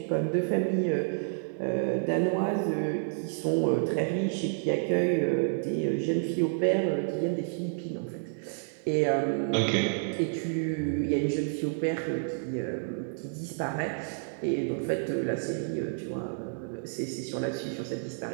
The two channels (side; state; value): left; silent; digital silence